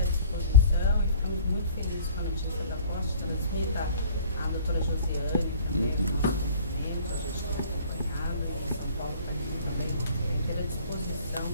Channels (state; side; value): inverted; both; correlation -0.49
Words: disposição e ficamos muito felizes com a notícia da posse. Transmita a doutora Josiane também, a gente está acompanhado, São Paulo também ter à disposição